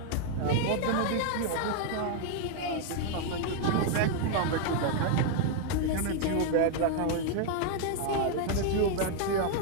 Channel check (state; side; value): different; both; correlation 0.00